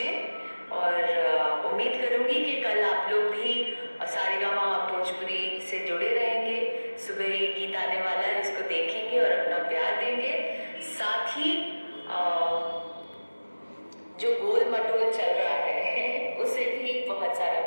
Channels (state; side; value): inverted; both; correlation -1.00